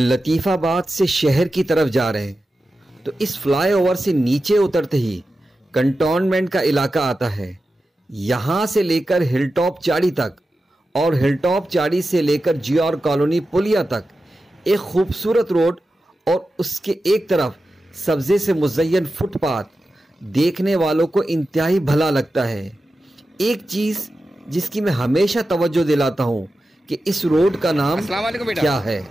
آباد سے شہر کی طرف جا رہے ہیں تو اس فلائی اوور سے نیچے اترتے ہی کنٹونمنٹ کا علاقہ آتا ہے. یہاں سے لے کر ہل ٹاپ چاڑی تک اور ہل ٹاپ چاڑی سے لے کر جی آر کالونی پلیا تک ایک خوبصورت روڈ اور اس کے ایک طرف سبزے سے مزین فٹ پاتھ دیکھنے والوں کو انتہائی بھلا لگتا ہے. ایک چیز جس کی میں ہمیشہ توجہ دلاتا ہوں کہ اس روڈ کا نام السلام علیکم بیٹا. کیا ہے.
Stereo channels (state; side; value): normal; both; correlation 0.92